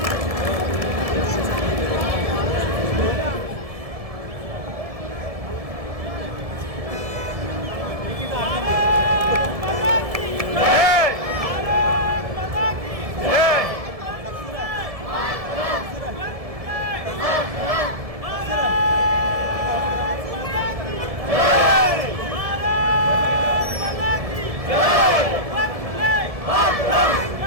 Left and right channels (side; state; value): left; late; 1.7 ms